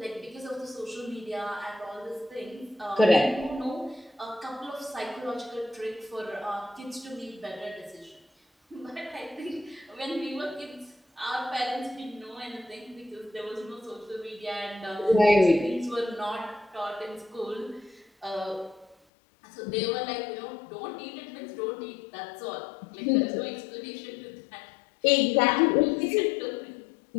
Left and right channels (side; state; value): right; drops out; at 18.9 s